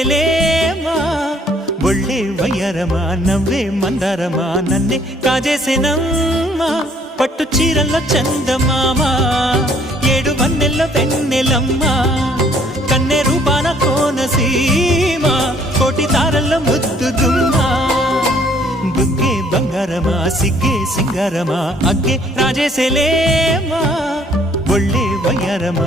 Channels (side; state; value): both; normal; correlation 0.61